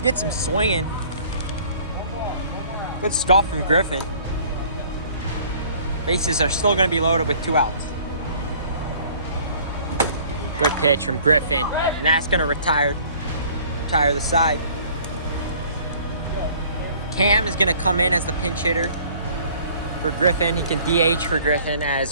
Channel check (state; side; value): inverted; both; correlation -0.54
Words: Gets him swinging. Good stuff from Griffin. Bases are still going to be loaded with 2 outs. Good pitch from Griffin, and that's going to retire the side. Cam is going to come in as the pinch hitter for Griffin. He can DH for Griffin